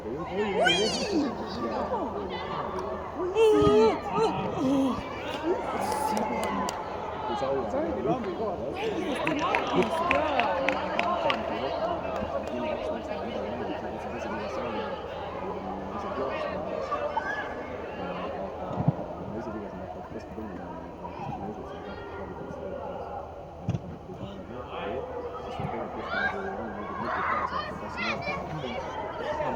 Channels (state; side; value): identical; both; correlation 1.00